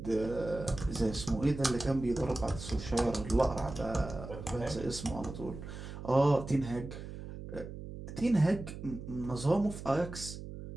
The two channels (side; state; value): right; noise; hum, 10 dB below the sound